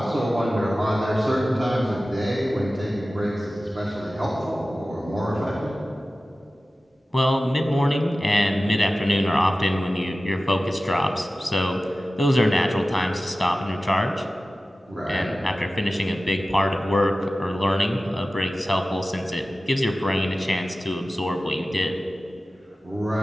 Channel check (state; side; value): normal; both; correlation 0.96